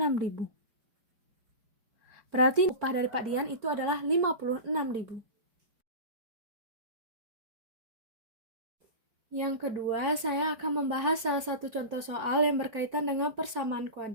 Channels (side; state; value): left; late; 4.5 ms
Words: Berarti upah dari Pak Dian itu adalah 56.000. Yang kedua, saya akan membahas salah satu contoh soal yang berkaitan dengan persamaan